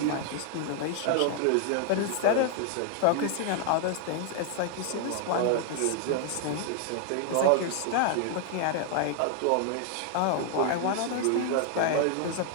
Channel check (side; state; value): both; different; correlation 0.00